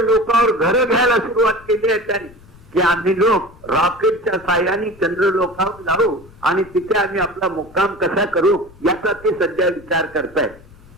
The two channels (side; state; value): left; noise; rumble, 24 dB below the sound